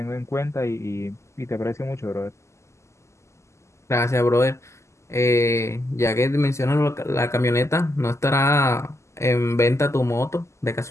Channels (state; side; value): late; right; 0.13 ms